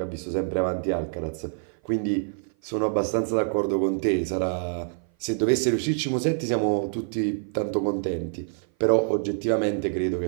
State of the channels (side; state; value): left; silent; 56 dB below the other